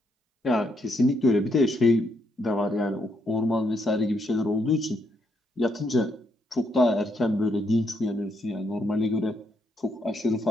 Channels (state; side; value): normal; both; correlation 0.76